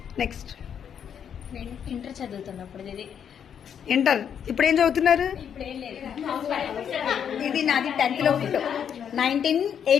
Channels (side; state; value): right; quieter; 8.2 dB